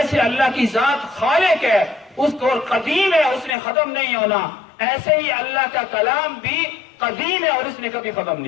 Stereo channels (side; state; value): right; drops out; at 3.6 s